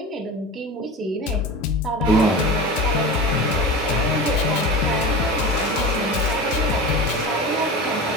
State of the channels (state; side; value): normal; both; correlation 0.30